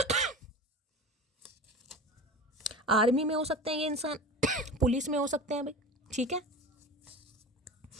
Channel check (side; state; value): both; normal; correlation 0.33